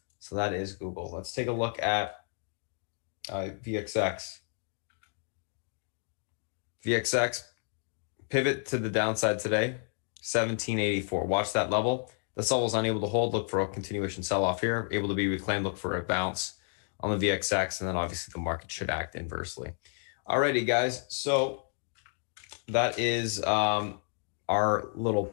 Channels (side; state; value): right; silent; 57 dB below the other